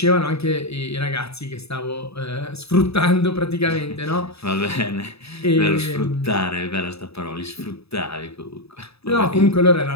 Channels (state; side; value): late; right; 0.78 ms